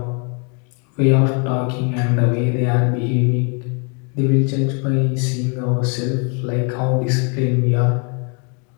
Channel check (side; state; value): right; quieter; 35.3 dB